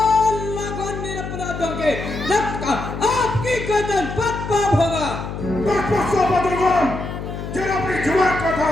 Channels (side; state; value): left; noise; hum, 7 dB below the sound